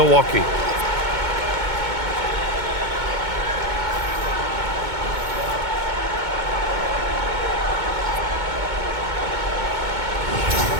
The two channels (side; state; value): left; late; 2.2 ms